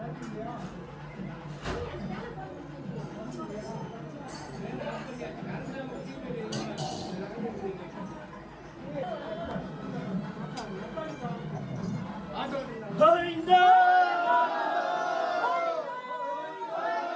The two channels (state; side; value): identical; both; correlation 1.00